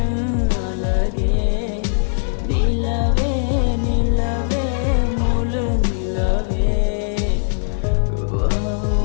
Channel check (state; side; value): silent; right; 66 dB below the other